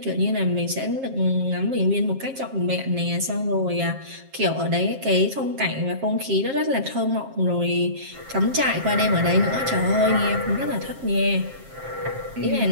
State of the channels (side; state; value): left; late; 7.5 ms